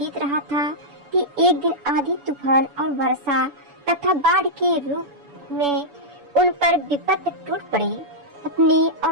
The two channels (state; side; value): late; left; 7.0 ms